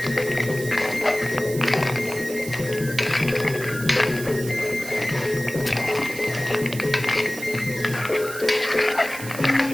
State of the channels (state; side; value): noise; right; hiss, 12 dB below the sound